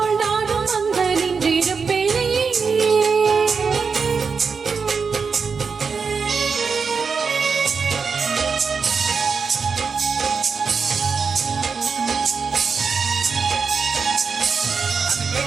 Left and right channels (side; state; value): left; quieter; 5.4 dB